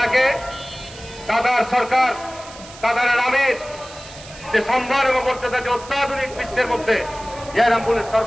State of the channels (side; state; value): right; noise; hiss, 18 dB below the sound